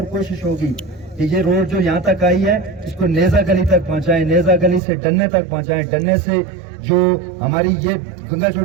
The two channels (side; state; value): left; drops out; at 4.8 s